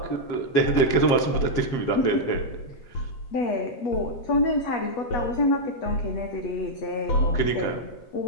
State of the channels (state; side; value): late; right; 7.4 ms